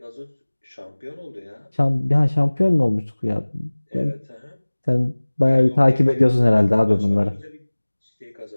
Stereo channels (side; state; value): both; inverted; correlation -1.00